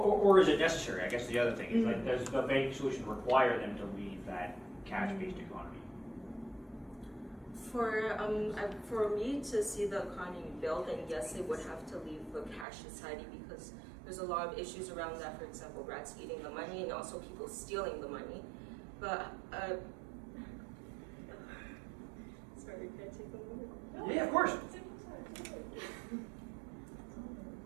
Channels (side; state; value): left; drops out; at 12.7 s